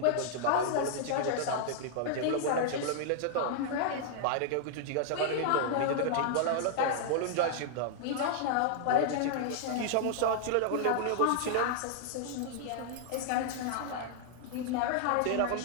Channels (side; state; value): both; different; correlation -0.01